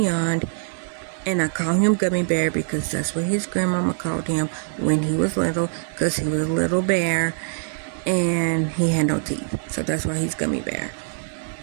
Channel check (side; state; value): left; silent; 63 dB below the other